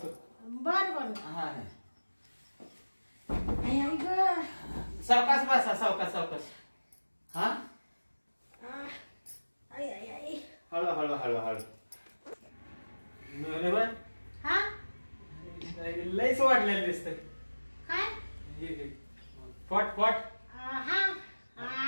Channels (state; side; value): inverted; both; correlation -1.00